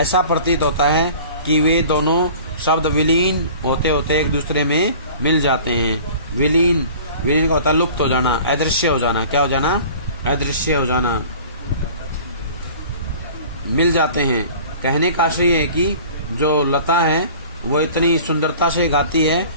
प्रतीत होता है कि वे दोनों शब्द विलीन होते होते एक दूसरे में मिल जाते हैं। विलीन का होता है लुप्त हो जाना, अदृश्य हो जाना। क्या हो जाना? अदृश्य हो जाना। मिल जाते हैं। कहने का आशय है कि जो लता है वो इतनी सुंदरता से गाती है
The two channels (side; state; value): both; inverted; correlation -0.44